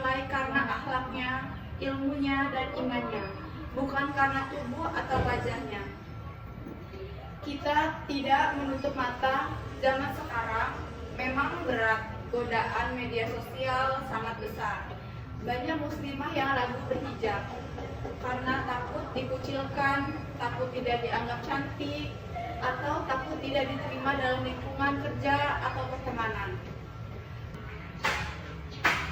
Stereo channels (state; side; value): identical; both; correlation 1.00